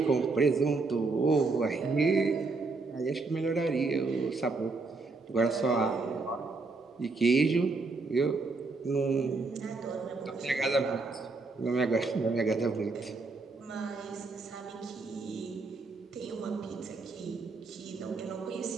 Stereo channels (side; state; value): left; quieter; 3.9 dB